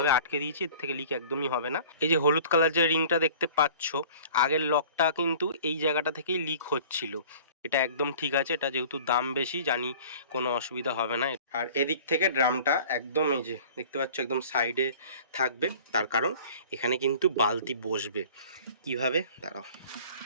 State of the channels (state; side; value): inverted; both; correlation -0.46